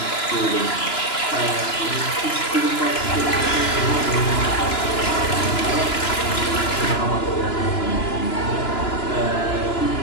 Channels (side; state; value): right; late; 2.9 ms